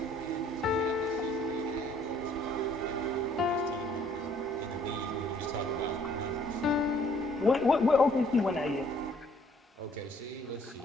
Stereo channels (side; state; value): both; normal; correlation 0.61